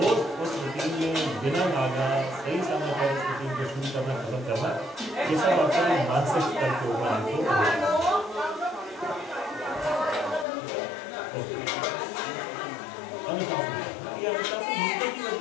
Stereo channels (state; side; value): drops out; right; at 10.5 s